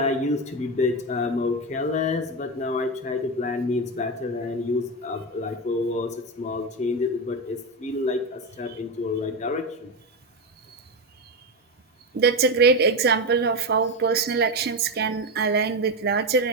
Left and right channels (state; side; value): normal; both; correlation 0.13